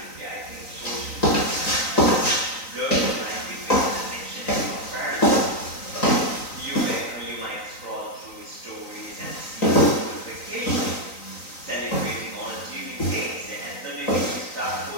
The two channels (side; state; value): right; late; 3.9 ms